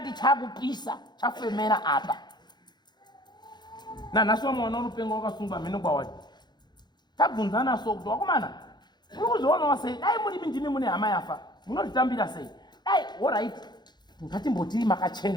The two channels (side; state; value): right; late; 0.21 ms